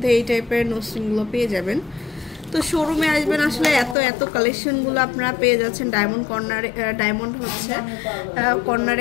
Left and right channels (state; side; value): drops out; right; at 4.0 s